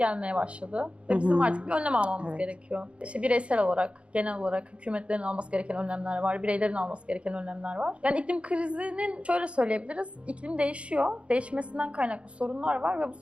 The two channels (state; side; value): late; left; 0.060 ms